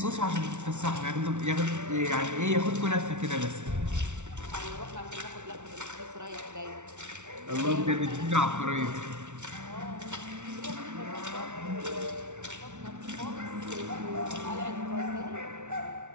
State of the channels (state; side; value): late; left; 0.84 ms